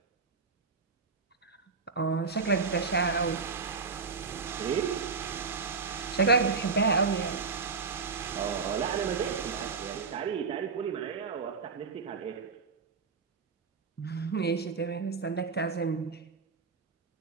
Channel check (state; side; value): quieter; left; 4.9 dB